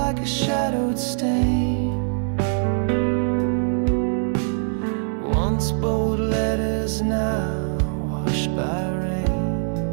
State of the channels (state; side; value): silent; left; 64 dB below the other